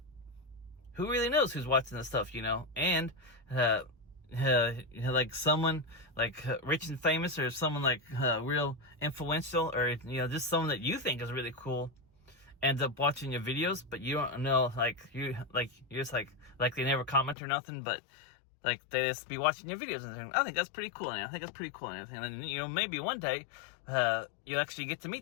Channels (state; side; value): drops out; right; at 17.4 s